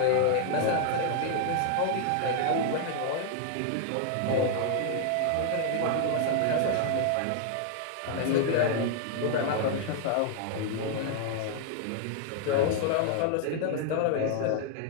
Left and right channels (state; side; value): different; both; correlation 0.00